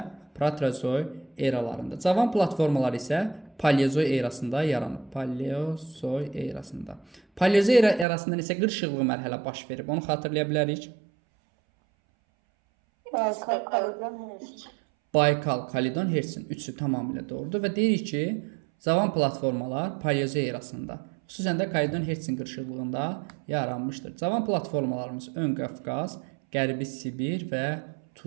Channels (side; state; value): left; drops out; at 8.1 s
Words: proterozoy eralarında. Cavan platformalar isə paleozoy erasında yaranıb. Paleozoy erasında. Paleozoy erasında isə qırışıqlı mərhələ baş verib. Onu xatırlaya bilərik. Baykal, Kalidon, Hertsin. Üçü tamamilə doğrudur və deyirik ki, cavan platformalar paleozoy erasında, xüsusən də Kalidon, Hertsin qırışıqlığında yaranmışdır. Cavan platformalarımız Ön Qafqaz, Qərbi Sibir və